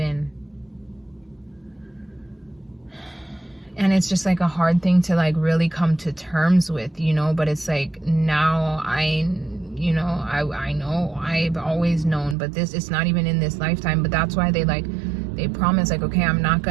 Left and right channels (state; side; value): drops out; left; at 12.4 s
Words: And it's just like a hard thing to like really come to terms with, but it's like now I know, I've always known, but it's not even in this lifetime. But that's why they promise, like, okay, I'm not